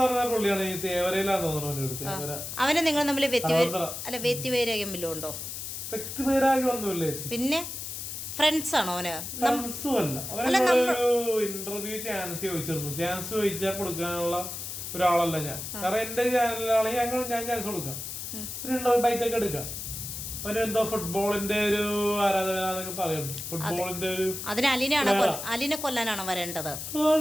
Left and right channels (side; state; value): left; noise; hiss, 7 dB below the sound